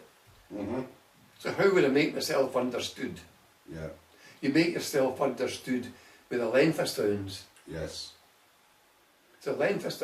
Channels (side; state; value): both; identical; correlation 1.00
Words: So how would I make myself understood? Yeah. You make yourself understood with a length of sounds. Yes. It's a length of